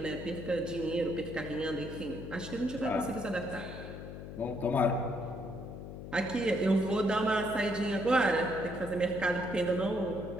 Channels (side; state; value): left; noise; hum, 10 dB below the sound